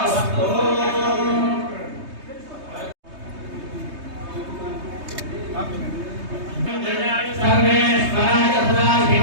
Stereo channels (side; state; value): left; late; 3.2 ms